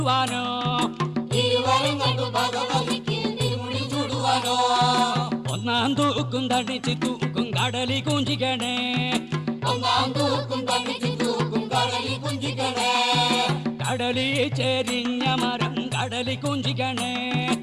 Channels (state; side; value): identical; both; correlation 1.00